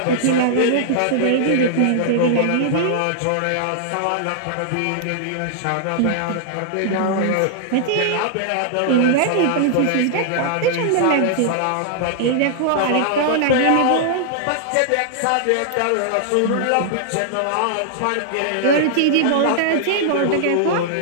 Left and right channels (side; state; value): both; different; correlation -0.01